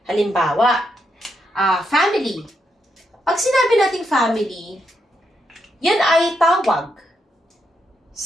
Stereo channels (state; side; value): normal; both; correlation 0.81